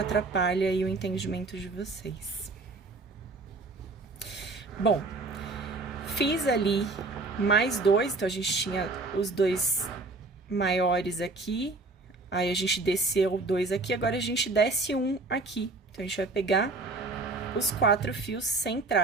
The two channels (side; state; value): left; quieter; 3.4 dB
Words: aí o entendimento de vocês. Bom, fiz ali mais 2, então a gente tinha os 2 maiores aqui, aí a gente desceu 2 aqui, agora a gente desce 1 aqui. Então, a gente vai pegar os 4 fios